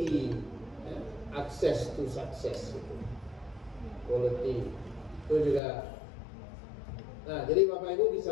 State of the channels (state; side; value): drops out; right; at 5.6 s